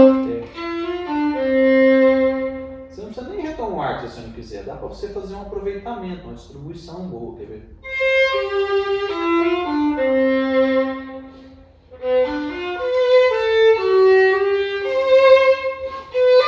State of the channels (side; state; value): both; identical; correlation 1.00